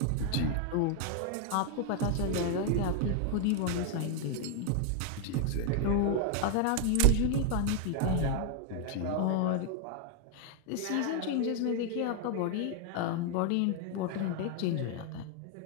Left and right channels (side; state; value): both; different; correlation 0.00